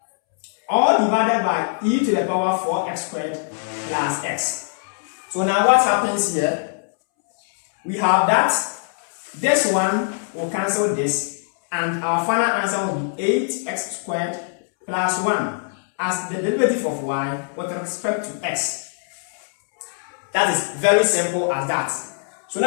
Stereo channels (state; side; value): silent; right; 64 dB below the other